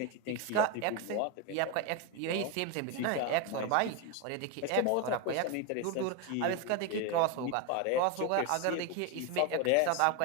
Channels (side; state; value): both; different; correlation 0.02